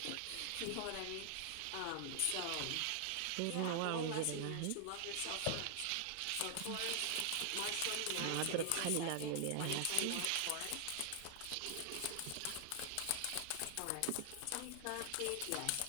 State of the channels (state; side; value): different; both; correlation 0.00